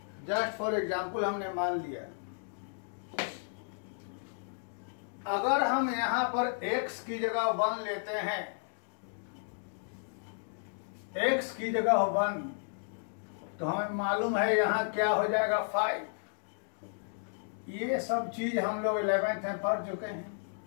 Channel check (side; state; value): right; silent; digital silence